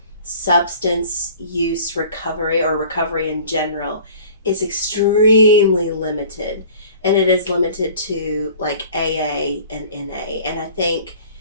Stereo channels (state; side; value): inverted; both; correlation -0.46